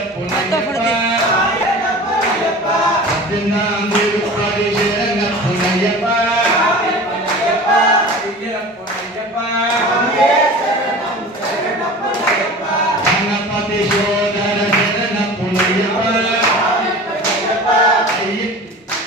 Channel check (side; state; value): both; normal; correlation 0.38